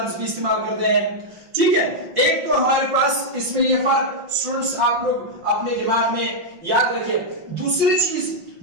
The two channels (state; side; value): late; left; 5.7 ms